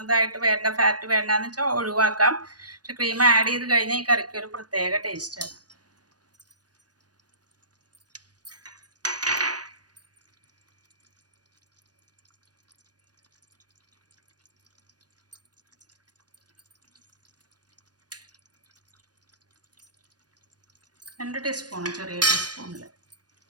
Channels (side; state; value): left; late; 0.69 ms